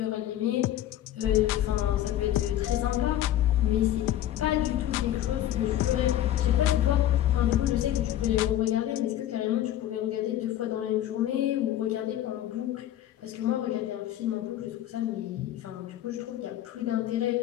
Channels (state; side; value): quieter; right; 12.5 dB